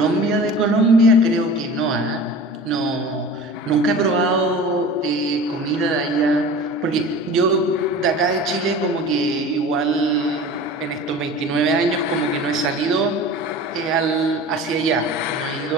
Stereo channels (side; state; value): both; normal; correlation 0.38